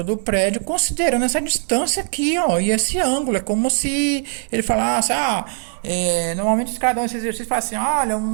do prédio considerando essa distância aqui, ó, e esse ângulo. É como se ele falasse, normalmente os caras dão esse exercício e falam assim, olha,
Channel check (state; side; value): silent; left; digital silence